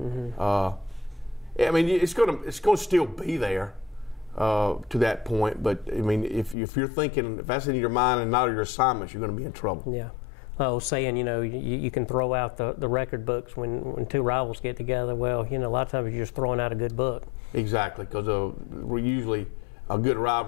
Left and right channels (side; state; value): right; drops out; at 6.6 s